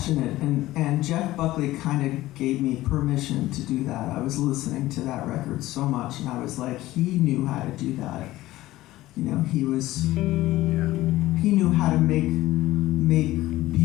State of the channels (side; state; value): right; quieter; 16.6 dB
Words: and Jeff Buckley kind of gave me permission to do that. I was listening to that record so much, and I was like, he knew how to do that. He knew how to make